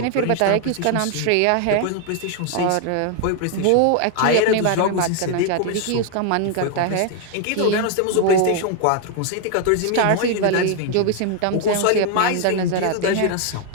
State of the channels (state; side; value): different; both; correlation 0.00